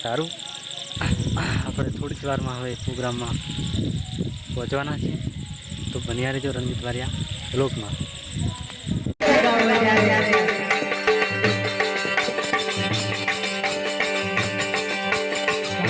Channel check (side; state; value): both; identical; correlation 1.00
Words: સારું. આપણે થોડી જ વારમાં હવે પ્રોગ્રામમાં પહોંચવાના છીએ. તો બન્યા રહેજો રણજીત બારિયા વ્લોગમાં.